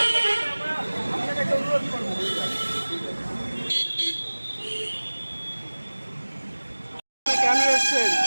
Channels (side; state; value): both; inverted; correlation -1.00